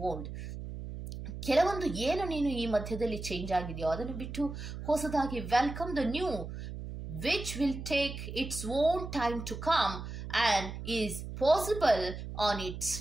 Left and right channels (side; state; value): right; noise; hum, 8 dB below the sound